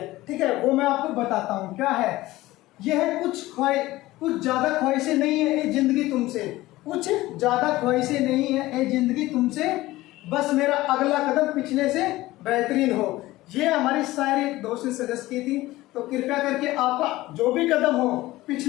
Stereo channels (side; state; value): right; quieter; 17.8 dB